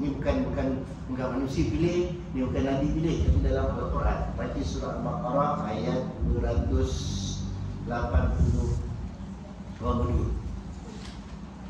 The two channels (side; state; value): both; identical; correlation 1.00